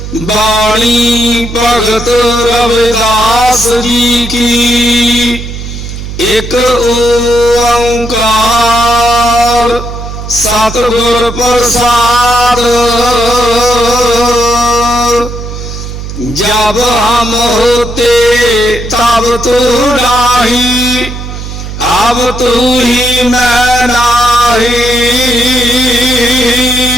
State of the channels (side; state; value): right; noise; hum, 9 dB below the sound